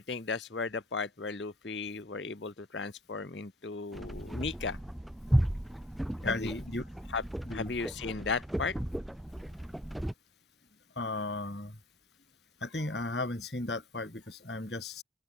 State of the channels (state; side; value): normal; both; correlation 0.54